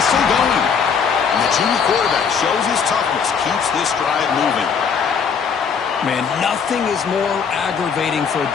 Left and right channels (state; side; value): quieter; right; 6.4 dB